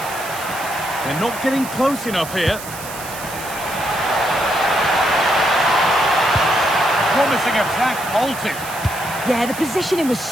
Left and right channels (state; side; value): noise; right; hiss, 12 dB below the sound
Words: They're not getting close enough here. Promising attack halted. Yeah, the positioning was